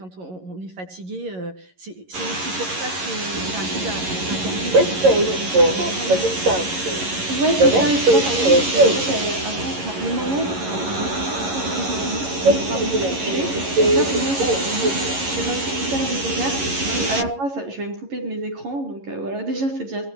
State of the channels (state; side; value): late; left; 11 ms